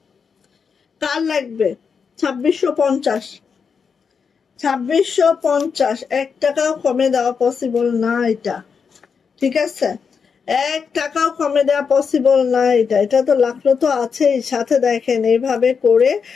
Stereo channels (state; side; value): quieter; right; 6.0 dB